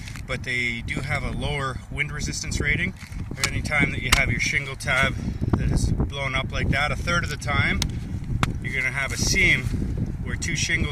but they do have a lower wind resistance rating. Any time that you have your shingle tab that is blown up like that, a third of the time you're going to have a seam where two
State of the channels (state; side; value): identical; both; correlation 1.00